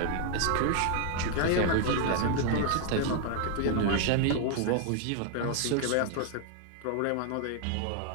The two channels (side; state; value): both; different; correlation 0.00